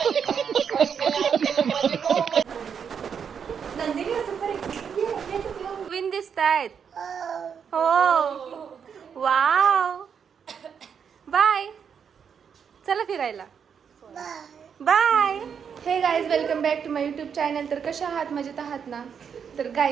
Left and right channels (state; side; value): quieter; left; 7.1 dB